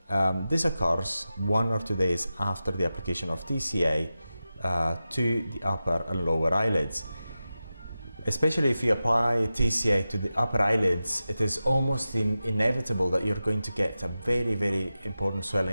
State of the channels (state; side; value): inverted; both; correlation -0.93